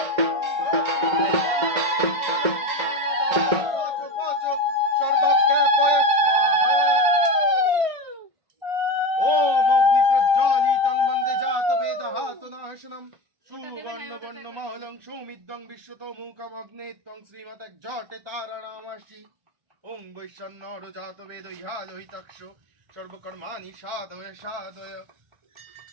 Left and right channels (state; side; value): late; left; 1.5 ms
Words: সর্বজ্ঞাপয় স্বাহা ওম অগ্নি প্রজ্বালিতং বন্দে জাতবেদহাতুনাশনম সুবর্ণবর্ণমহলং সুমিদ্যং বিশ্বতমুখম অগ্নে ত্বং শ্রীমতজ্জটে তারানামাসি ওং বৈশ্বন্নর জাতবেদ ইহালোহিতক্ষ সর্বকর্মাণি সাধয় সাধয়